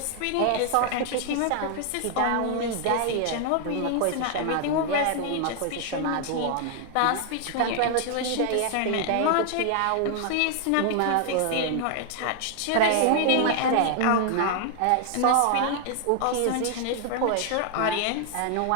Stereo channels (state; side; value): different; both; correlation 0.00